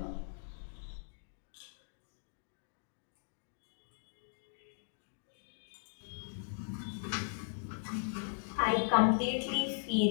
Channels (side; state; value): right; silent; digital silence